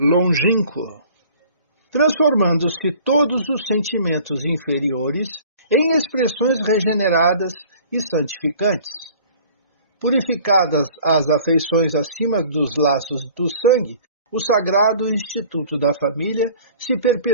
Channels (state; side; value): inverted; both; correlation -0.49